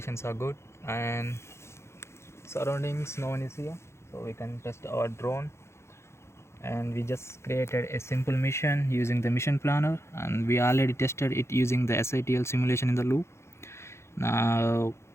are good and surroundings, no one is here, so we can test our drone. And we just created a simple mission using the mission planner, and we already tested it using the SITL simulation in the loop. Now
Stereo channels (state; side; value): late; right; 0.13 ms